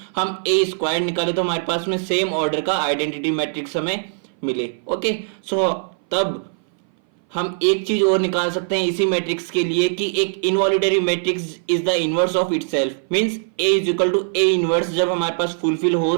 हम ए स्क्वायर निकाले तो हमारे पास में सेम ऑर्डर का आइडेंटिटी मैट्रिक्स हमें मिले। ओके, तब हम एक चीज और निकाल सकते हैं इसी मैट्रिक्स के लिए कि एक involutory matrix is the inverse of itself. Means A is equal to A inverse जब हमारे पास फुलफिल हो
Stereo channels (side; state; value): left; silent; 60 dB below the other